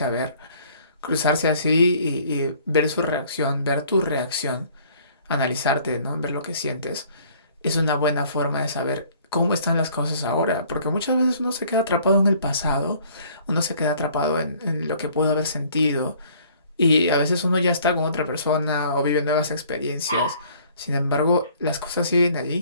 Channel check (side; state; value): both; inverted; correlation -0.56